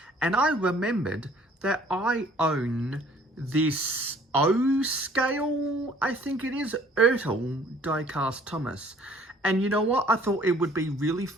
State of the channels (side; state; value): both; normal; correlation 0.56